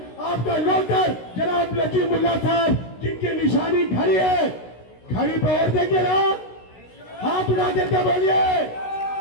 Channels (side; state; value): right; late; 16 ms